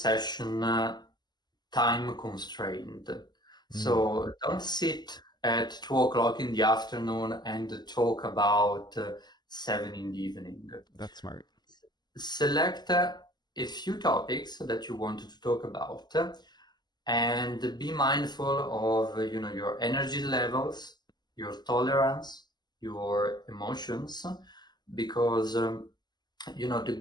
session time constrained. Hmm. So don't sit at 2 o'clock in the afternoon and talk about 7 in the evening. That's smart. Select a few topics that you want to talk about, and be mindful of your energy levels, your tolerance, your emotions, because the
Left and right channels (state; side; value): late; right; 0.21 ms